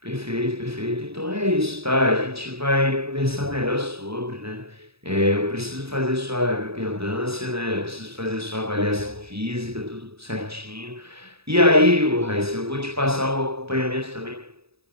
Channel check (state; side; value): late; left; 0.77 ms